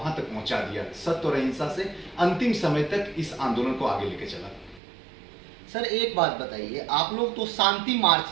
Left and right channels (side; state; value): left; drops out; at 4.8 s